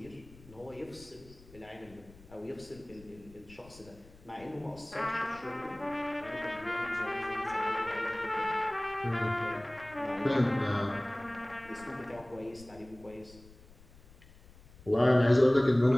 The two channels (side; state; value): left; noise; rumble, 23 dB below the sound